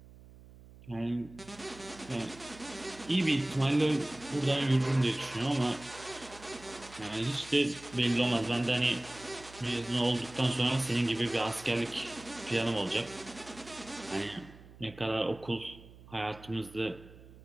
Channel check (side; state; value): right; noise; hum, 20 dB below the sound